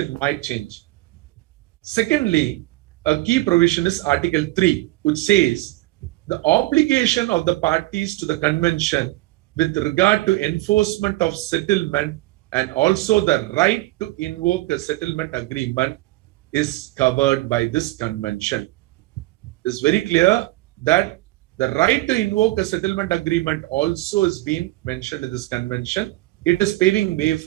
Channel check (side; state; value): left; quieter; 18.8 dB